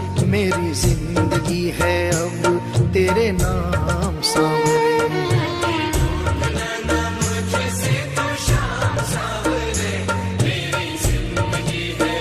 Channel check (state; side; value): identical; both; correlation 1.00